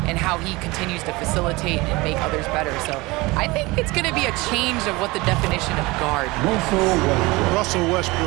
and how he continues to facilitate and make others better. So I think it's going to be a change of what the definition of guard. Russell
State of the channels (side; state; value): left; quieter; 22.6 dB